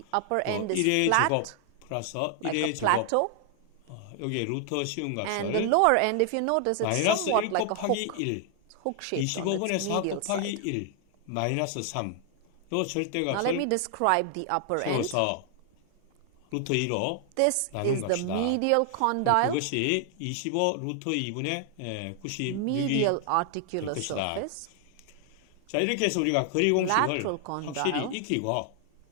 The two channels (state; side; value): different; both; correlation 0.00